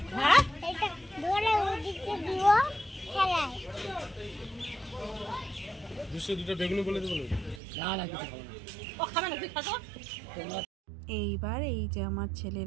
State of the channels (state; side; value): drops out; left; at 7.6 s